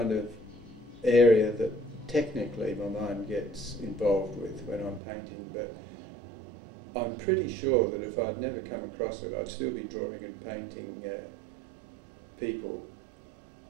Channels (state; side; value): drops out; left; at 5.0 s